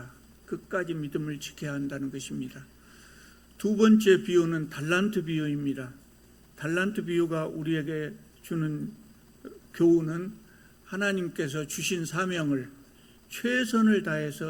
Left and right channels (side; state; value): both; identical; correlation 1.00